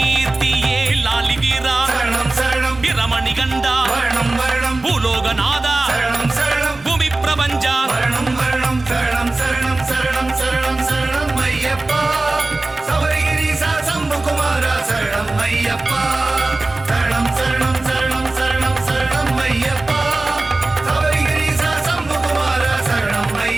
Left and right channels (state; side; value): quieter; left; 3.0 dB